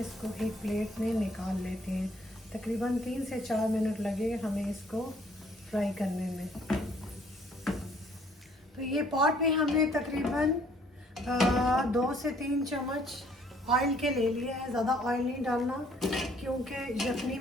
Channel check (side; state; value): both; normal; correlation 0.61